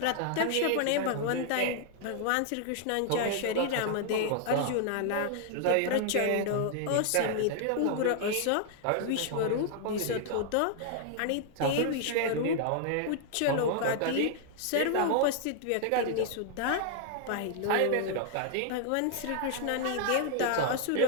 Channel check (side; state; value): both; different; correlation 0.00